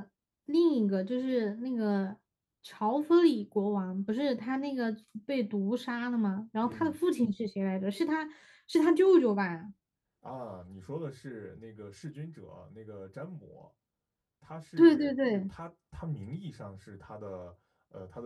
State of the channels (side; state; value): both; identical; correlation 1.00